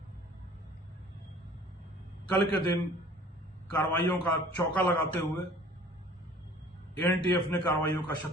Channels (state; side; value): normal; both; correlation 0.49